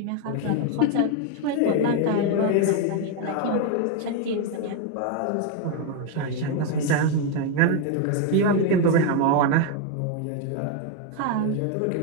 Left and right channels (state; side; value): different; both; correlation 0.01